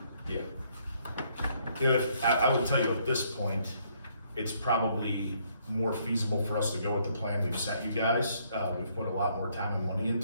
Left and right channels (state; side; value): inverted; both; correlation -0.68